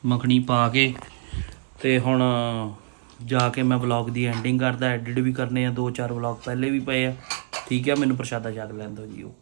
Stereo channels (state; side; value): silent; left; digital silence